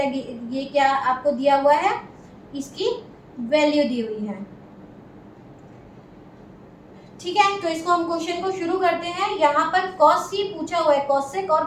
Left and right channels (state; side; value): identical; both; correlation 1.00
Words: ये क्या आपको दिया हुआ है? इसकी वैल्यू दी हुई है। ठीक है, तो इसको हम क्वेश्चन को शुरू करते हैं। यहाँ पर cos ही पूछा हुआ है, cosec और